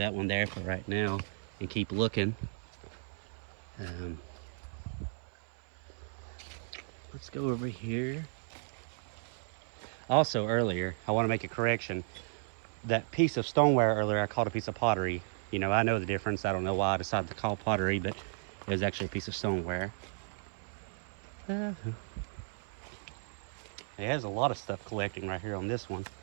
one there for right now and keep looking. Let's go over here. Also earlier, I want to make a correction. That piece of stoneware earlier, I called a piece of pottery. You know, I know the difference. I don't know why I decided to call pottery, but it was actually a piece of stoneware. It has a lot of stuff collecting right here on this one.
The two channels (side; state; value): left; silent; 55 dB below the other